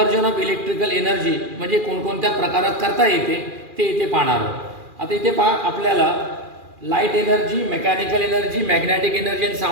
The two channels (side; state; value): left; late; 2.4 ms